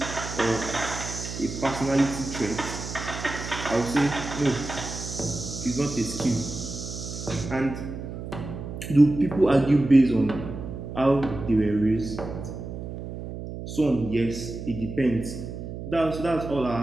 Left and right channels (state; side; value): noise; right; hum, 8 dB below the sound